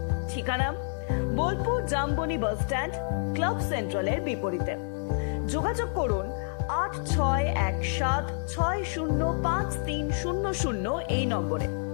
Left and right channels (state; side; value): silent; right; digital silence